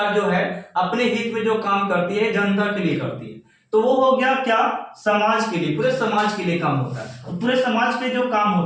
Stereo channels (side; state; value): both; identical; correlation 1.00